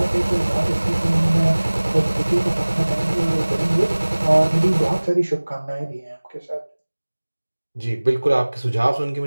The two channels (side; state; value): both; inverted; correlation -1.00